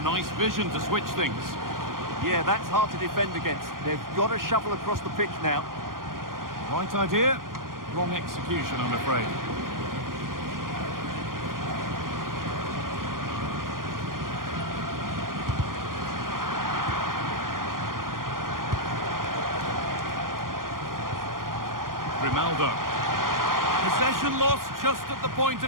nice vision to switch things. Yeah, that's hard to defend against. They've got to shuffle across the pitch now. Right idea, wrong execution, I'm afraid. Grimaldo. Possession lost just at the point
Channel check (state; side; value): late; left; 0.91 ms